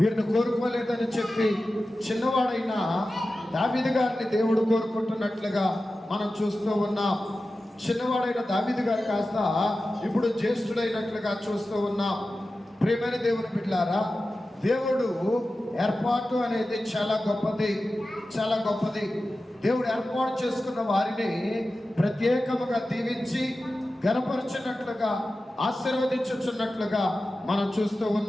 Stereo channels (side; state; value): both; normal; correlation 0.94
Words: కోరుకోలేదని చెప్పి చిన్నవాడైన దావీదు గారిని దేవుడు కోరుకుంటున్నట్లుగా మనం చూస్తూ ఉన్నాం. చిన్నవాడైన దావీదు గారు కాస్త ఇప్పుడు జ్యేష్ఠుడైనట్లుగా చూస్తూ ఉన్నాం. ప్రియమైన దేవుని బిడ్డలారా, దేవుడు ఏర్పాటు అనేది చాలా గొప్పది. దేవుడు ఏర్పాటు చేసుకున్న వారిని ప్రత్యేకముగా దీవించి ఘనపరచినట్లుగా, ఆశీర్వదించుచున్నట్లుగా మనం చూస్తూ